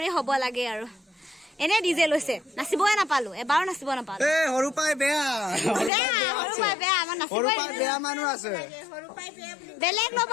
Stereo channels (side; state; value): right; drops out; at 5.9 s